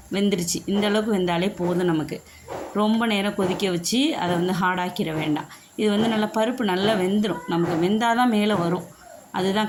வெந்துருச்சு. இந்த அளவுக்கு வெந்தாலே போதும் நமக்கு. ரொம்ப நேரம் கொதிக்க வச்சு அதை வந்து ஹார்டாக்கிட வேண்டாம். இது வந்து நல்லா பருப்பு நல்லா வெந்துடும். நமக்கு வெந்தால் தான் மேலே வரும்,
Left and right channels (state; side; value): identical; both; correlation 1.00